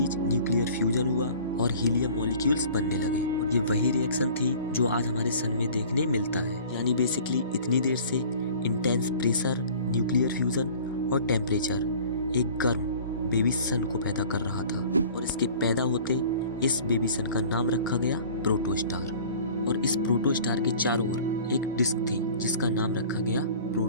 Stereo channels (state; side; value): inverted; both; correlation -0.46